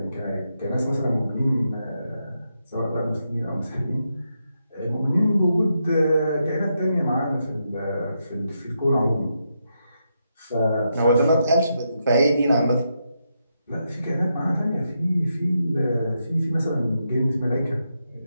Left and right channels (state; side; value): inverted; both; correlation -0.83